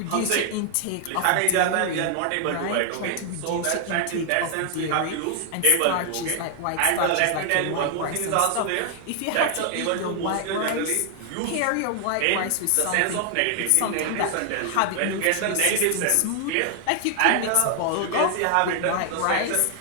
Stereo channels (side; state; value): both; different; correlation 0.00